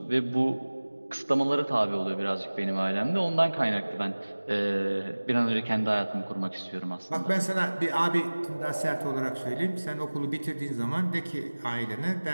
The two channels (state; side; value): inverted; both; correlation -1.00